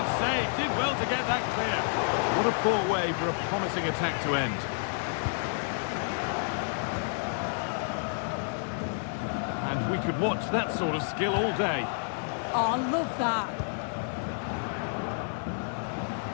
save. Did well to get that clear. What a poor way for a promising attack to end. And we could watch that sort of skill all day. Oh, I love that.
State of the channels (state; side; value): silent; right; digital silence